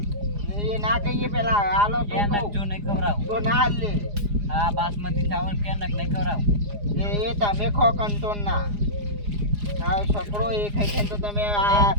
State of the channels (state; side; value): late; left; 4.9 ms